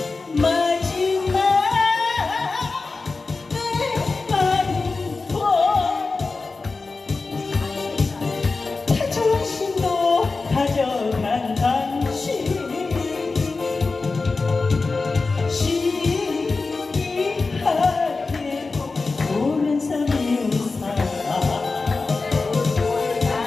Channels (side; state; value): right; quieter; 3.9 dB